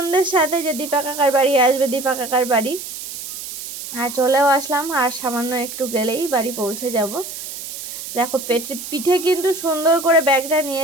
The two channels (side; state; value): right; noise; hiss, 9 dB below the sound